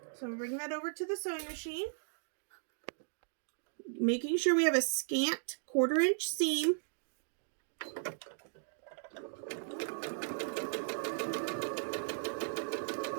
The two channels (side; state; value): left; silent; digital silence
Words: So I'm bringing that over to the sewing machine. Making sure we have a scant 1/4 inch seam.